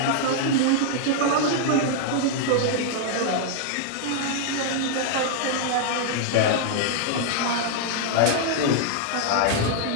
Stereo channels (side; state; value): both; different; correlation -0.01